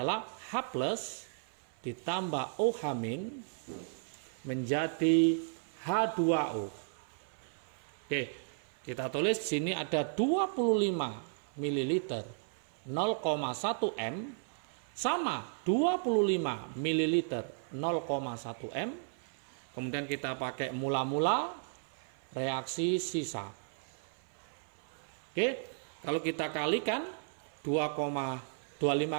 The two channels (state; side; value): silent; left; 55 dB below the other